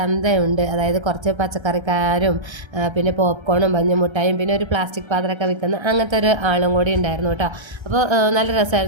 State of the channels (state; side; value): late; left; 1.3 ms